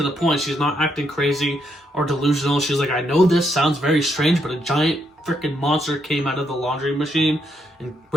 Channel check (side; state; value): both; normal; correlation 0.77